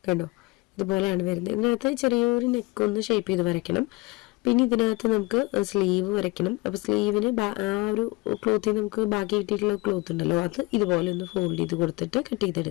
കണ്ടോ, ഇതുപോലെയാണ് വരുന്നത്. ഇതിനകത്ത് ചെറിയൊരു നെക്കൊന്ന് ഷേപ്പ് ചെയ്ത് വരയ്ക്കണം. പിന്നെ ഇതിനകത്ത് നമുക്ക് സ്ലീവ് വരയ്ക്കണം. അപ്പോൾ സ്ലീവിന് ആ ഒരു ക്ലോത്തിൽ നമുക്ക് ബാക്കി കിട്ടിയിട്ടുള്ള ക്ലോത്ത് ഉണ്ടല്ലോ, അത് ഇതുപോലെ ഒന്ന് ഫോൾഡ് ചെയ്ത് കൊടുത്തിട്ട് കട്ട്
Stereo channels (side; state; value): right; quieter; 23.6 dB